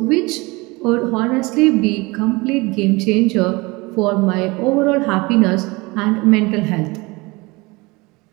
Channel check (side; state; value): left; quieter; 24.3 dB